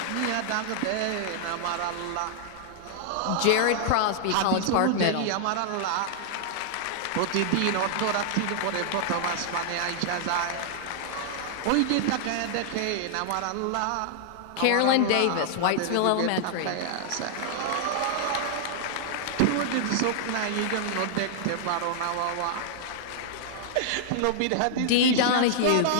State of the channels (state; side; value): different; both; correlation -0.01